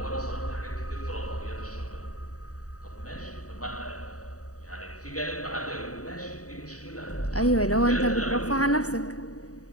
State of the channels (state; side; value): late; right; 0.66 ms